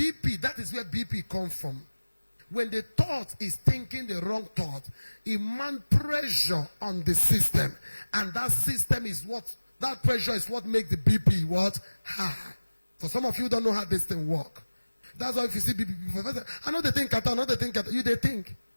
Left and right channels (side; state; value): both; inverted; correlation -1.00